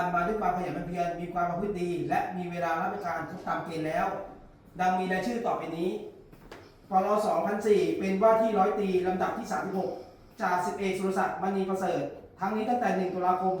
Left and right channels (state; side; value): identical; both; correlation 1.00